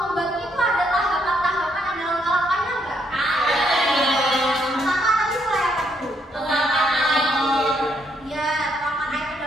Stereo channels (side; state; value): both; normal; correlation 0.74